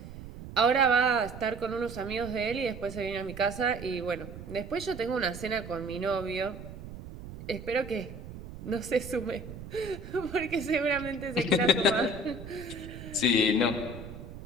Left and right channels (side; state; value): right; noise; rumble, 12 dB below the sound